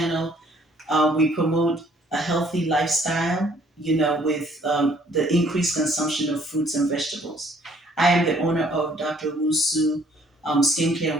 we promote a healthy lifestyle, with the increased consumption of fruits and vegetables. I am the owner of Dr. Owusu Skincare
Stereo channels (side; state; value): both; normal; correlation 0.61